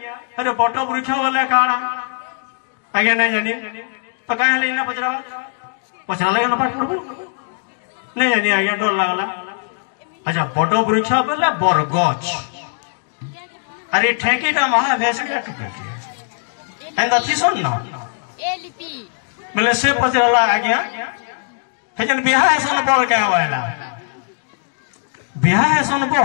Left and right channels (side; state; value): right; silent; digital silence